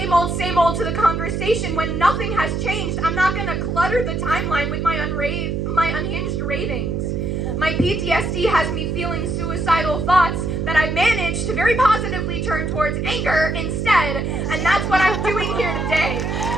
old to the conversation when nothing has changed. I'm not going to clutter the timeline with my unhinged ravings. My PTSD has me feeling suicidal thoughts that I've managed to very positively turn towards anger instead, and that's what I'm doing here today.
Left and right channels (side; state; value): right; noise; hum, 1 dB below the sound